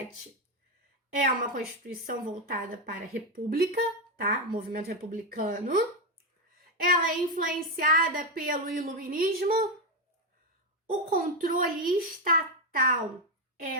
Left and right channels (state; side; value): normal; both; correlation 0.07